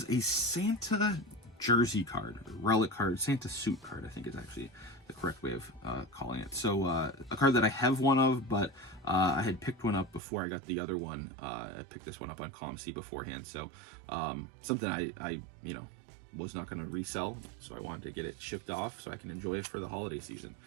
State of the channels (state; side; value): drops out; left; at 10.2 s